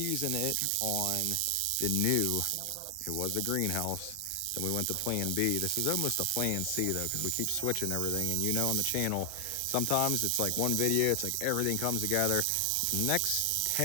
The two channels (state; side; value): different; both; correlation 0.00